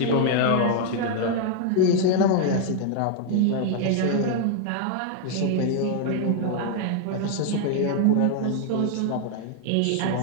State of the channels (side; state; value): both; different; correlation 0.00